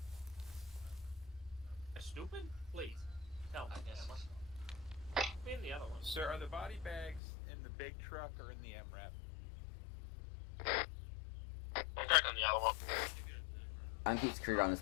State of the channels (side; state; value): right; drops out; at 7.2 s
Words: I'm stupid? Please, tell me. Be in the other one. Sir, are the body bags in the big truck or in the MRAP? I'm checking the other one. I'm keep security around